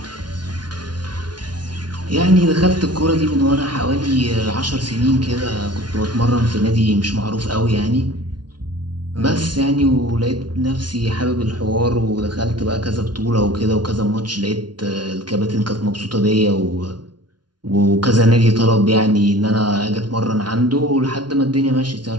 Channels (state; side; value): late; left; 0.70 ms